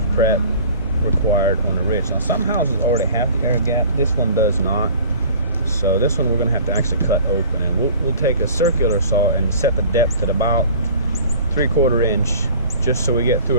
prep required on the ridge. Now some houses already have the air gap, this one does not. So this one we're going to have to actually cut open, and we'll take a circular saw and set the depth at about 3/4 inch, just so we get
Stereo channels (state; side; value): inverted; both; correlation -0.46